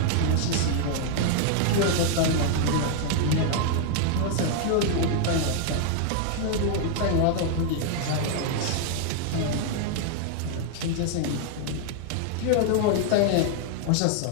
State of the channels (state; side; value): different; both; correlation 0.00